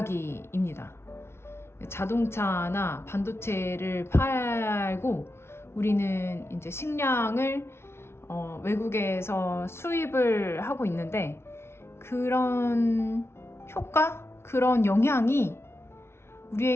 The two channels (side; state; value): right; late; 0.12 ms